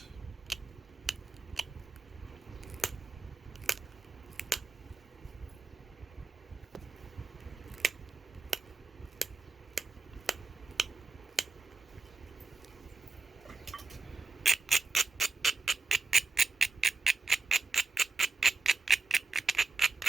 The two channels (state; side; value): quieter; left; 4.0 dB